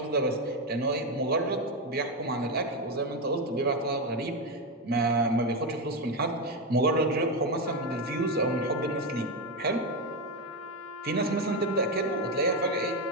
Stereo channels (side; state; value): both; normal; correlation 0.10